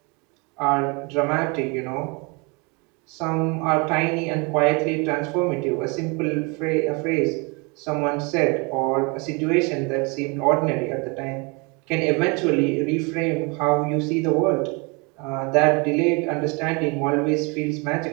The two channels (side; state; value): left; quieter; 30.2 dB